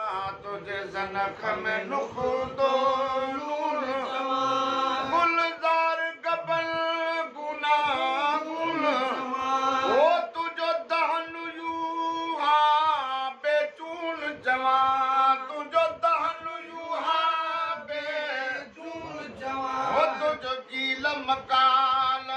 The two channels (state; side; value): identical; both; correlation 1.00